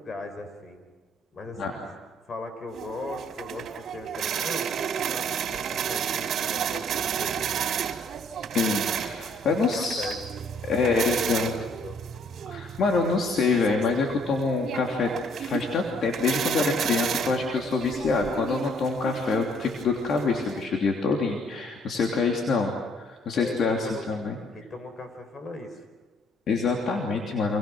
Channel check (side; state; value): both; normal; correlation 0.64